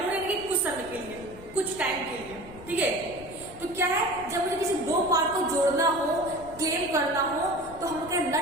यानी कि कुछ समय के लिए, कुछ टाइम के लिए, ठीक है। तो क्या है, जब मुझे किसी दो पार्ट को जोड़ना हो, क्लेम करना हो, तो हम क्या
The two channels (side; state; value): left; noise; rumble, 18 dB below the sound